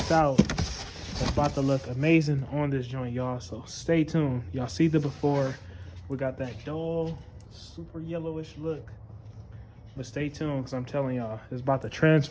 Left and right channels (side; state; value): both; identical; correlation 1.00